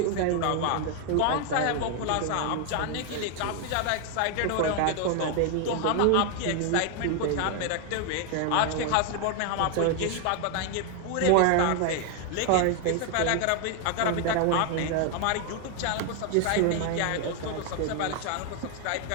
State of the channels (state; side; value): different; both; correlation 0.01